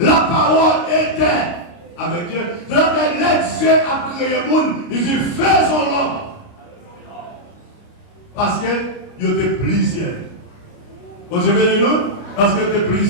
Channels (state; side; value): late; right; 29 ms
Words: parole était avec Dieu. Donc, Dieu a créé le monde, il dit, faisons l'homme. Parce que il y a plusieurs. Vous avez nous? Parce que il y a